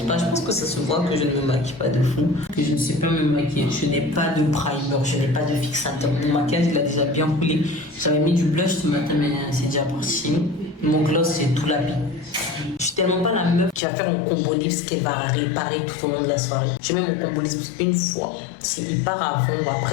pas, je pense que ça se voit que je ne me maquille pas de fou. Que je ne sais pas me maquiller. Je n'ai pas de primer, je n'ai pas de fixateur. Mon maquillage, il a déjà bien coulé. J'avais mis du blush ce matin, mais c'est déjà parti. Mon gloss, c'est tout la vie. Je suis tellement pas la meuf qui va faire mon combo lips qu'elle va réparer tout au long de la soirée. Je mets mon combo lips une fois. S'il part avant ou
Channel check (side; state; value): right; drops out; at 13.8 s